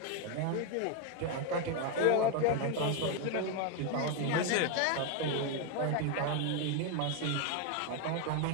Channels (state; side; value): different; both; correlation 0.01